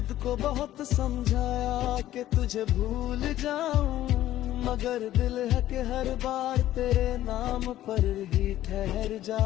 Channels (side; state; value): right; quieter; 13.6 dB